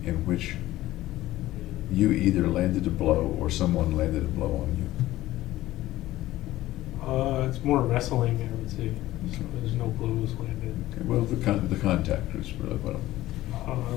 in which you either landed a blow or someone landed a blow on you? It's more wrestling, I would say. So Okay. there's no blows landed. Okay, well, the contact is really what I'm...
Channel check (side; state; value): right; quieter; 15.9 dB